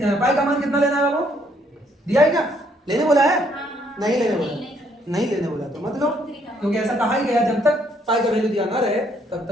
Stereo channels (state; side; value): normal; both; correlation 0.68